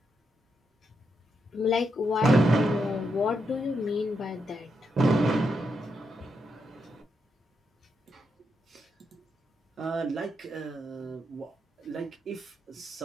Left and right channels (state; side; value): normal; both; correlation 0.82